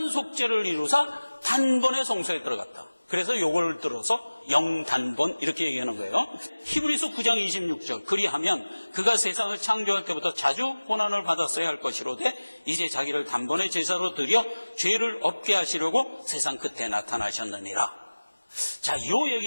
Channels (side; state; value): both; inverted; correlation -1.00